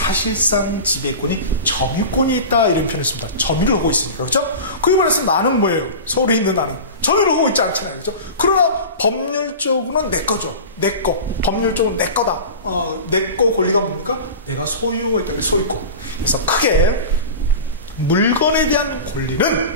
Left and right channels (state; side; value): inverted; both; correlation -0.31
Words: 지배권이 점유권이 있다 이런 표현을 씁니다. 점유를 하고 있으니까. 그렇죠? 그에 반해서 나는 뭐예요? 서울에 있는 나는 점유를 하고 있지 않잖아요. 그렇죠? 그러나 법률적으로는 내 거죠. 내 거. 법률적으로 내 거다. 내 거 권리가 뭡니까? 내가 소유하고 있다. 소유권. 그래서 크게 물건에 대한